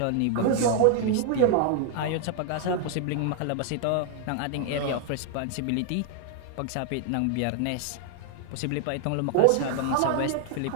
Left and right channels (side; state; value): both; different; correlation 0.00